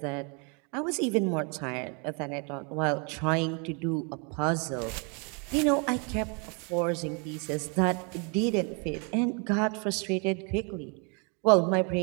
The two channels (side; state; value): left; quieter; 34.9 dB